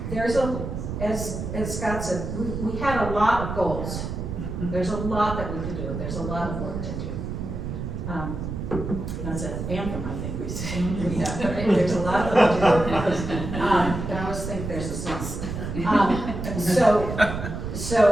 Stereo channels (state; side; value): noise; right; rumble, 5 dB below the sound